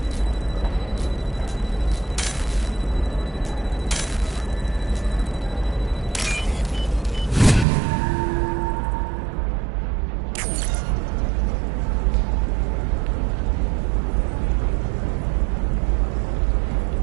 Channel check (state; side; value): drops out; left; at 7.7 s